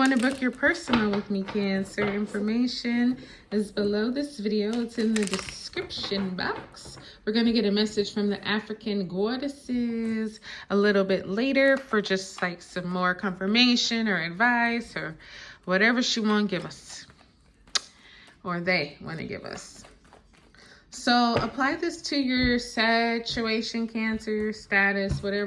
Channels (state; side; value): identical; both; correlation 1.00